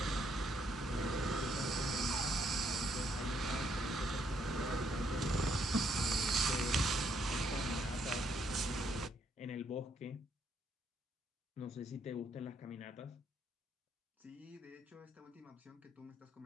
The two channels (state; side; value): normal; both; correlation 0.72